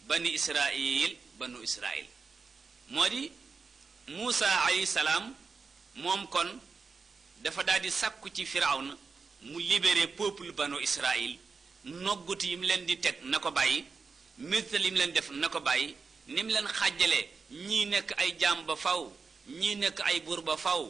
banu israil moo di Muusa alayhi salaam moom kon dafa daal di sàkku ci firawna mu libéré peuple banu israil noggut yi mu leen di teg na ko bàyyi métal yi mu leen def na ko bàyyi ni mu leen xàjjalee ñii nekk ay jaam ba faw ñii nekk ay buur ba faw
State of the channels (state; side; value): quieter; left; 4.8 dB